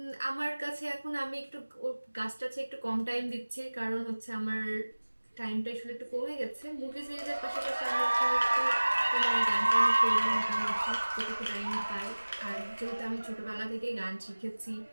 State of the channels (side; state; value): both; inverted; correlation -1.00